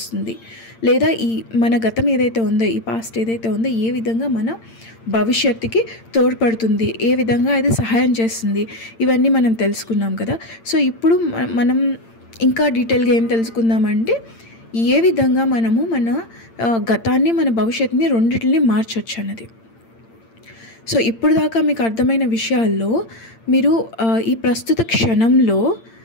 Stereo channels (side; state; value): right; late; 8.8 ms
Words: లేదా మన గతం ఏదైతే ఉందో, ఈ పాస్ట్ ఏదైతే ఉందో ఏ విధంగా మన భవిష్యత్తుకి తోడ్పడుతుంది, ఏ విధంగా అది సహాయం చేస్తుంది, ఇవన్నీ మనం తెలుసుకున్నాం కదా. సో ఇప్పుడు మనం ఇంకా డీటెయిల్గా ఏం తెలుసుకుందామంటే, ఏ విధంగా మనము మన గతాన్ని, మన భవిష్యత్తుని రెండింటిని మార్చొచ్చు అన్నది. సో ఇప్పుడు దాకా మీకు అర్థమైన విషయాల్లో మీరు ఈ ప్రస్తుత క్షణంలో